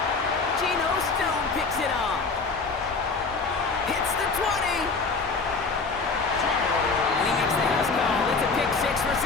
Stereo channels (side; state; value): right; quieter; 4.3 dB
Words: Geno Stone picks it off. Hits the 20. And he makes the house call. It's a pick 6 for